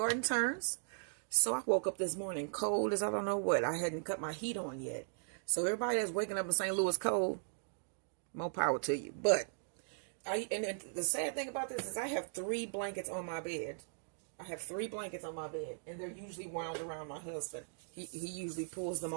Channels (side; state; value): left; silent; digital silence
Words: turns. So I woke up this morning cold as I don't know what. I hadn't cut my heat on yet. So everybody that's waking up in St. Louis cold, more power to you. But the sad thing about this is I have 3 blankets on my bed. I have 3 blankets on my bed, and they're usually wound around my husband. He usually pulls them